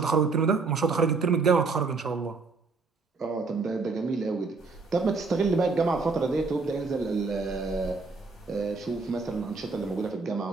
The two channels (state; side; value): quieter; left; 4.2 dB